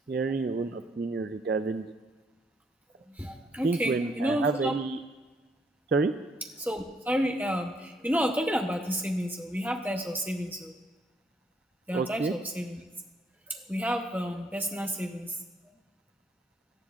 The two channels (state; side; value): normal; both; correlation 0.70